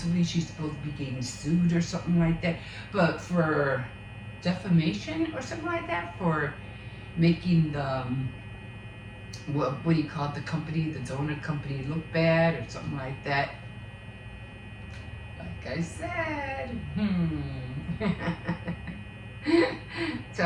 she's supposed to be getting sued or something like that. But for defamation or something like that, for making the what do you call it, the company, the donut company, look bad or something like that. Like I said,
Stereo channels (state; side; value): identical; both; correlation 1.00